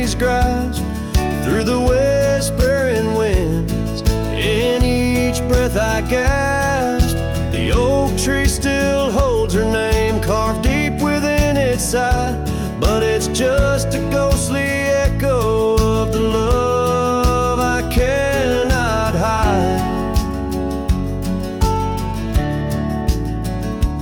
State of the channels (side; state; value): both; identical; correlation 1.00